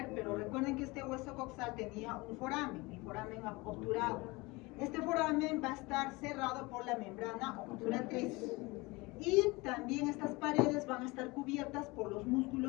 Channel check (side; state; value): right; quieter; 23.9 dB